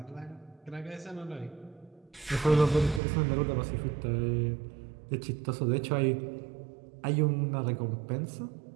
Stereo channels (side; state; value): left; drops out; at 3.0 s